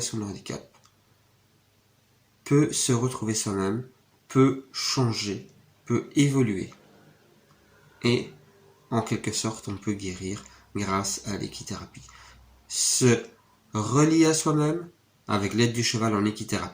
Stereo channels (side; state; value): both; identical; correlation 1.00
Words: de handicap, peut se retrouver soi-même, peut changer, peut évoluer. Et en quelque sorte, on peut guérir grâce à l'équithérapie. Se relier à soi-même, avec l'aide du cheval en